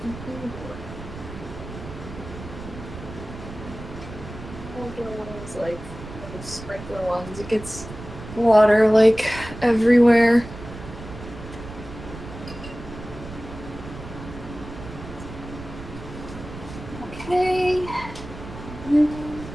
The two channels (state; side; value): noise; right; rumble, 12 dB below the sound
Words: an outdoor ones, like those sprinkler ones. It gets water like everywhere. Okay.